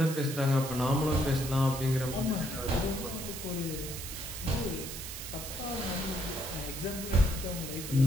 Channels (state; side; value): noise; right; hiss, 8 dB below the sound